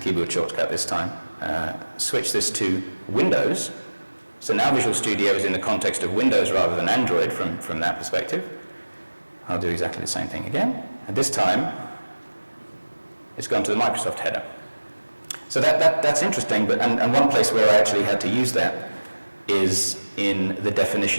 keyboard shortcut this time, switch this to Windows, so now Visual Studio is in the context of Windows rather than Android from that perspective. I'll do exactly the same thing again, and this time it's gone to the Microsoft header. So that's interesting, but and one place where I actually had to use that is in the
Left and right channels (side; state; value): both; inverted; correlation -1.00